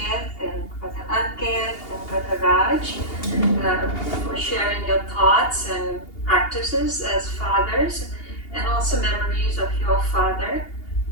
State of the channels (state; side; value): late; right; 2.8 ms